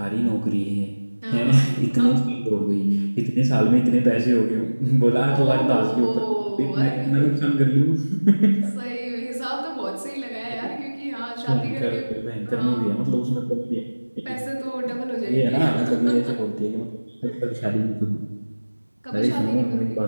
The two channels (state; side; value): inverted; both; correlation -1.00